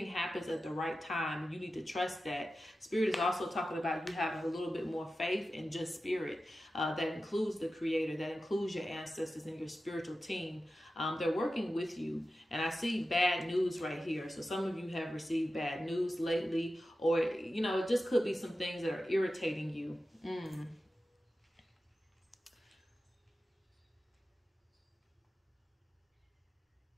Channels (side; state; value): both; normal; correlation 0.93